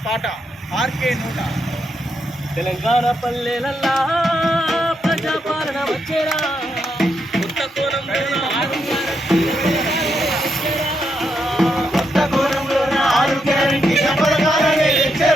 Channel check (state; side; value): normal; both; correlation 0.81